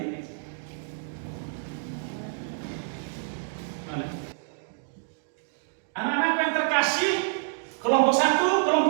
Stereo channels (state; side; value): silent; left; digital silence